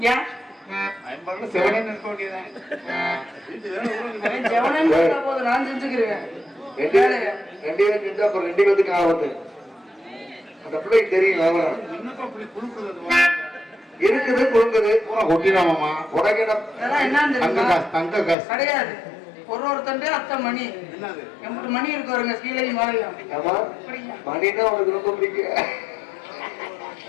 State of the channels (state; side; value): drops out; right; at 18.4 s